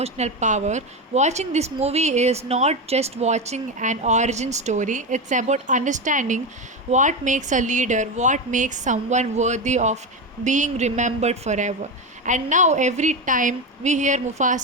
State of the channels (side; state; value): both; normal; correlation 0.16